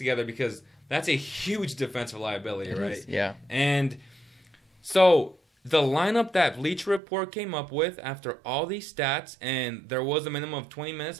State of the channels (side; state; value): left; drops out; at 7.0 s